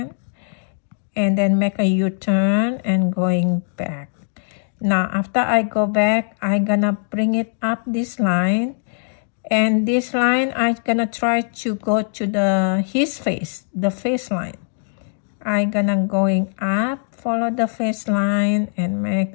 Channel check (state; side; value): silent; right; digital silence